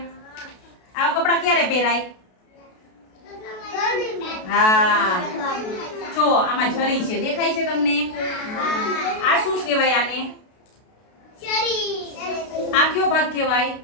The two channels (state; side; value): late; right; 32 ms